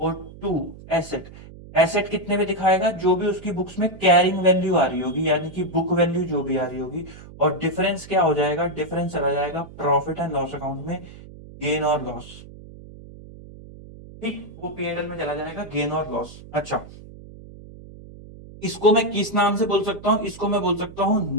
2 एसेट। एसेट कितने में दिखाएगा? जो भी उसकी बुक्स में कैरिंग वैल्यू आ रही होगी, यानी कि बुक वैल्यू जो भी आ रही होगी। और डिफरेंस क्या हो जाएगा? डिफरेंस चला जाएगा प्रॉफिट एंड लॉस अकाउंट में, गेन और लॉस। ठीक, वो P&L में चला जाएगा गेन और लॉस। अच्छा, इसको मैं किस नाम से बोल सकता हूं? इसको मैं बोल सकता हूं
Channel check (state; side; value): noise; right; hum, 17 dB below the sound